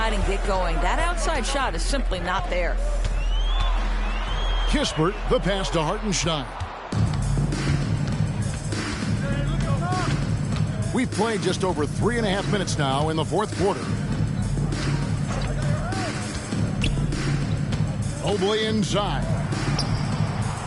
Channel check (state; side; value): identical; both; correlation 1.00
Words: and get going. That outside shot is simply not there. Kispert, the pass to Hartenstein. We've played just over 3.5 minutes now in the fourth quarter. Mobley inside.